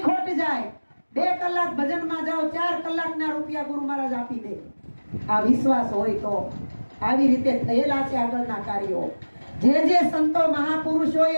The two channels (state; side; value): inverted; both; correlation -1.00